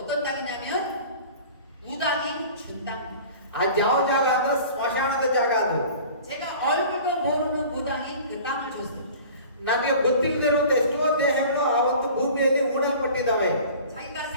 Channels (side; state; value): both; inverted; correlation -0.43